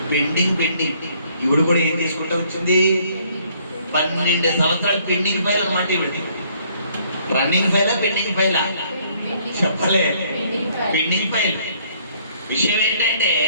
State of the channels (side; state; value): both; inverted; correlation -0.64